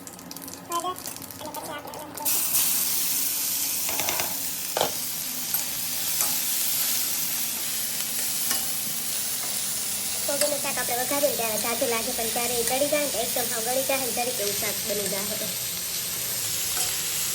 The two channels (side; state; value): both; identical; correlation 1.00